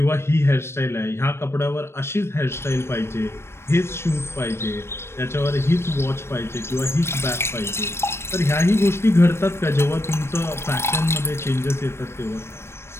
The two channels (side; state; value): right; late; 0.12 ms